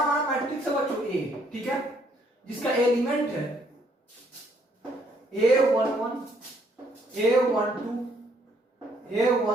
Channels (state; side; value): normal; both; correlation 0.68